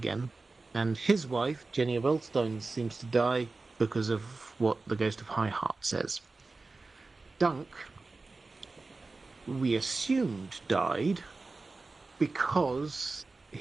And his wife, Jenny of Earlstone, seems to die because of what the Ghost of High Heart says. Dunk, we assumed, died because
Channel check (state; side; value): quieter; left; 3.6 dB